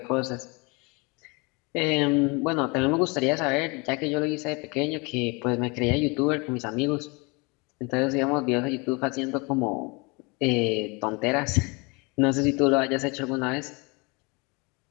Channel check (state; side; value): quieter; right; 28.6 dB